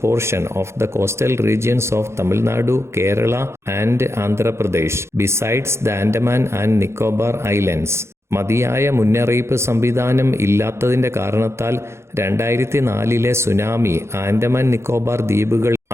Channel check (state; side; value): late; left; 0.13 ms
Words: portion of the coastal regions of Tamil Nadu, Kerala and Andhra Pradesh, besides the Andaman and Nicobar Islands. മതിയായ മുന്നറിയിപ്പ് സംവിധാനം ഇല്ലാത്തതിൻ്റെ കാരണത്താൽ 2004 tsunami Andaman Nicobar ദ്വീപുകൾ,